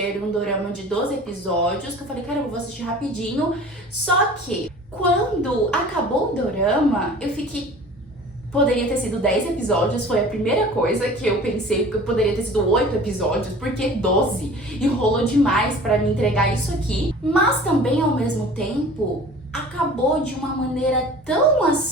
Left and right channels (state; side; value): normal; both; correlation 0.44